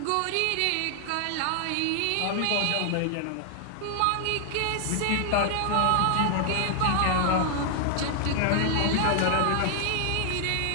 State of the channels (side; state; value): both; different; correlation 0.00